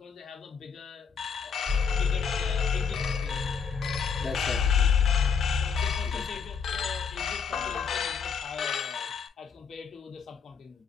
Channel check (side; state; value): right; quieter; 6.3 dB